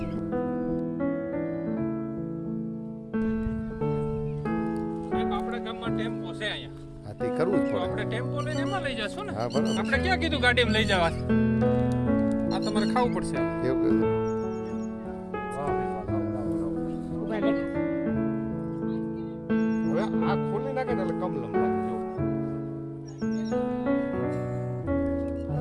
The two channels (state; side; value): identical; both; correlation 1.00